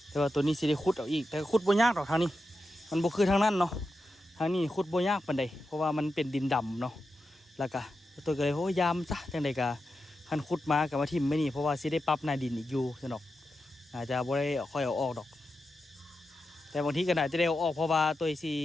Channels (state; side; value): normal; both; correlation 0.89